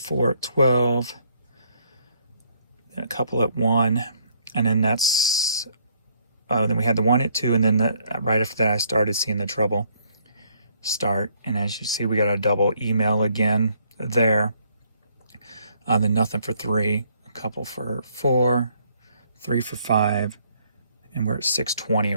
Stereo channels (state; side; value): inverted; both; correlation -0.67